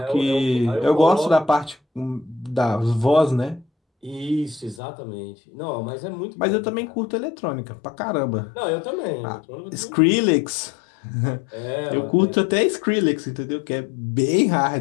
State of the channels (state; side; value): drops out; right; at 4.8 s